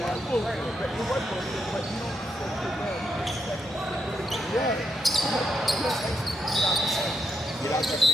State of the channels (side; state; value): both; normal; correlation 0.81